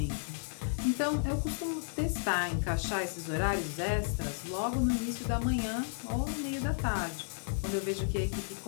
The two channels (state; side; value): silent; right; 56 dB below the other